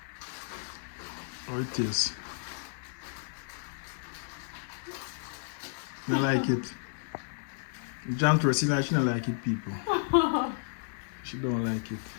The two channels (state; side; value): silent; right; digital silence